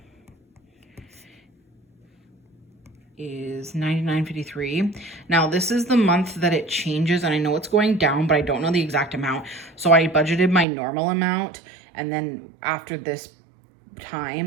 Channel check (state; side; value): drops out; left; at 10.7 s